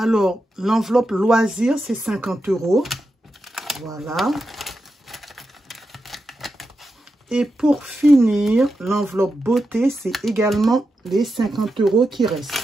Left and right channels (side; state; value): both; normal; correlation 0.88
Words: l'enveloppe loisir, c'est 50 €. Voilà. Et pour finir, l'enveloppe beauté, c'est également les 50 € qui